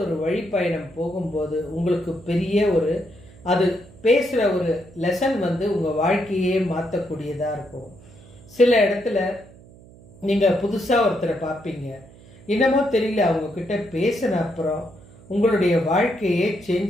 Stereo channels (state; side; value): noise; right; hum, 22 dB below the sound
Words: ஒரு வழிப்பயணம் போகும்போது உங்களுக்கு பெரிய அது பேசுகிற ஒரு லெசன் உங்கள் வாழ்க்கையே மாற்றக்கூடியதாக இருக்கும். சில இடத்துல நீங்கள் புதுசாக ஒருத்தரை பார்ப்பீங்க, என்னமோ தெரியல, அவங்கக்கிட்ட பேசின அப்புறம் உங்களுடைய வாழ்க்கையே